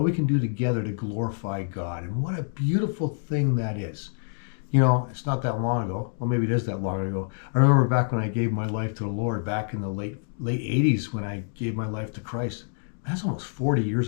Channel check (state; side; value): silent; right; digital silence